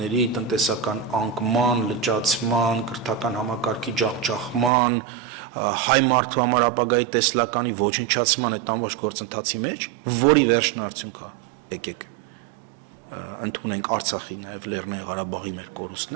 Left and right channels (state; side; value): drops out; left; at 4.7 s